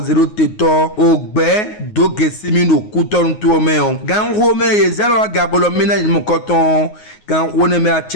teto ogbe Dogesimi no kuton to me on gan ho me ye zelo gabolo mina mo koton gan ho ne me a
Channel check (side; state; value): right; late; 9.5 ms